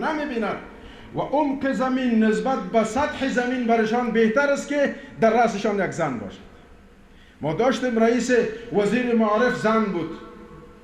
و عمق زمین نسبت به سطح زمین برشان بهتر است که در رأسشان یک زن باشد. ما داشتیم رئیس وزیر معارف زن بود،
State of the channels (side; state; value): both; identical; correlation 1.00